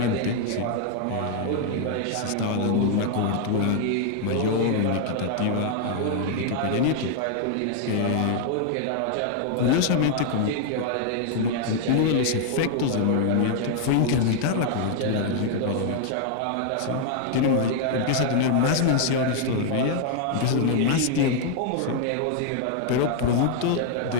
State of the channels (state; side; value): different; both; correlation 0.00